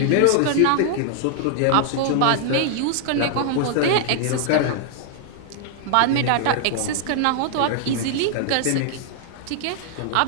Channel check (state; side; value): different; both; correlation -0.01